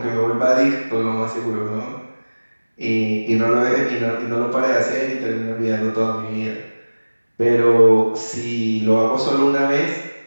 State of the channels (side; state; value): both; inverted; correlation -1.00